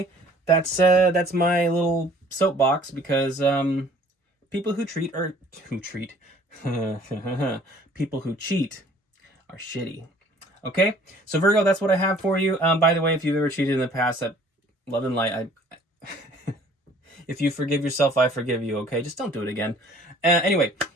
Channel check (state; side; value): normal; both; correlation 0.54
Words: That's my little soapbox, because people who cheat people who cheat are shitty. Okay? So Virgo, that's what I have for you. By the way, if you've ever cheated in the past, that love and light, if you forgive yourself, I forgive you, okay? Just don't do it again. Anyway,